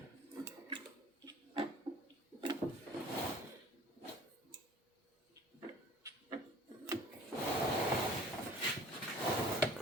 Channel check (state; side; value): normal; both; correlation 0.49